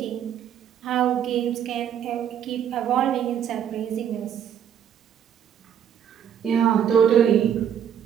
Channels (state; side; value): quieter; left; 9.2 dB